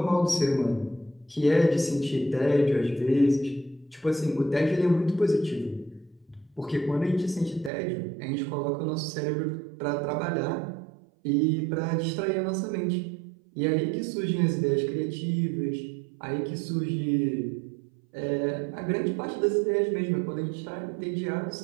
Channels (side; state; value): left; drops out; at 7.7 s